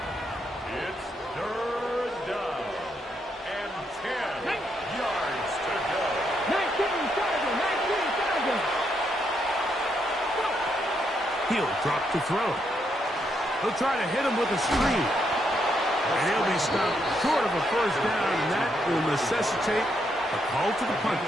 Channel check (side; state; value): both; normal; correlation 0.78